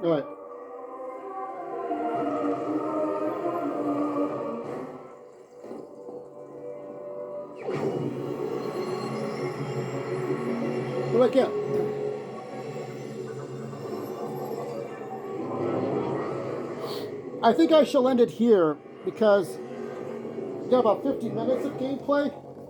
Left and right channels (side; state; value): both; identical; correlation 1.00